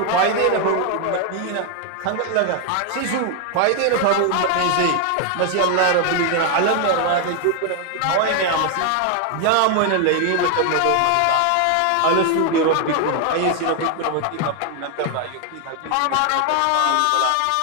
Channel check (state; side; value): different; both; correlation 0.00